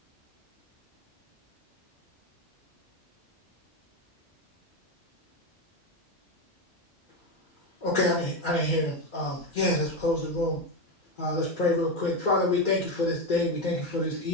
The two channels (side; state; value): both; normal; correlation 0.12